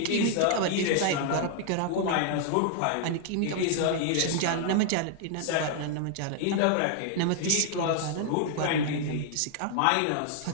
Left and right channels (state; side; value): different; both; correlation 0.00